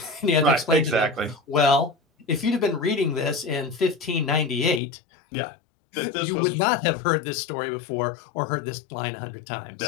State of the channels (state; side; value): drops out; right; at 4.8 s